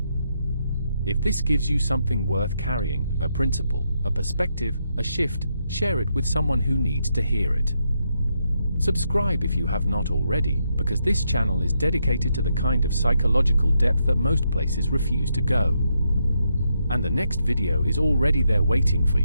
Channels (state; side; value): inverted; both; correlation -0.80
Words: If this gives you something worth carrying, a principle, a perspective, a shift, share it with someone who needs to hear it. Subscribe if you have not already, because this channel is dedicated to the kind of psychological depth that most places refuse to go. And the next video is already there waiting for